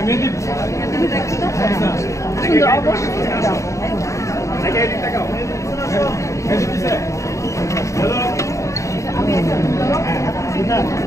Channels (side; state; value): right; late; 0.15 ms